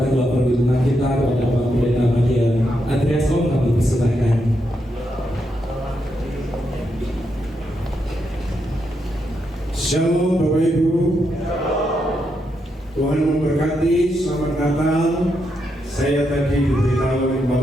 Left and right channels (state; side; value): normal; both; correlation 0.82